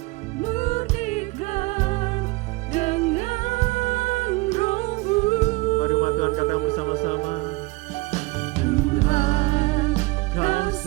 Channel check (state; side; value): quieter; left; 23.9 dB